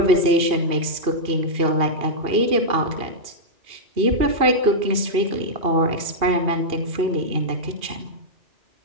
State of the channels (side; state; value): left; late; 2.7 ms